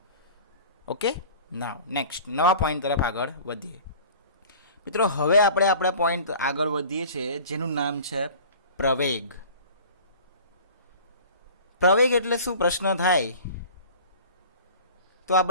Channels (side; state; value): both; inverted; correlation -0.42